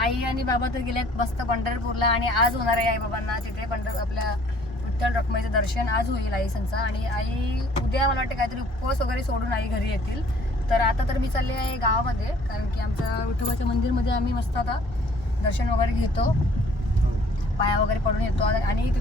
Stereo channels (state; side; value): normal; both; correlation 0.57